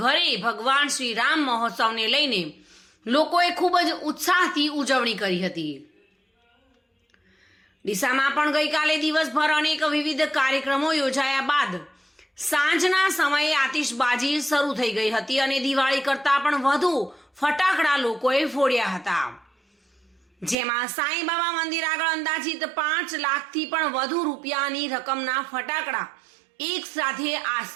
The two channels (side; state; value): left; drops out; at 20.6 s